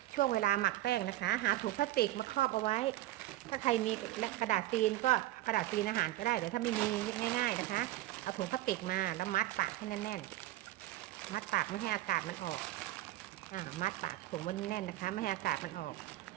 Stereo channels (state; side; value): quieter; left; 15.7 dB